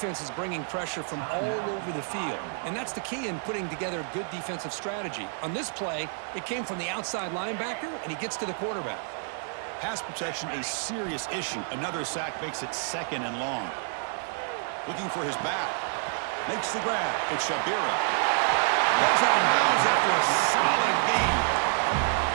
is bringing pressure from all over the field, and that's the key in putting together a good defensive strategy. On this play, it came from the outside linebacker, and he gets to the quarterback. Pass protection a serious issue. Another sack makes it 2nd and long. Looking for his back. Makes the grab. It's Shabira. Heads out of bounds after a solid gain.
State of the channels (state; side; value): silent; left; 59 dB below the other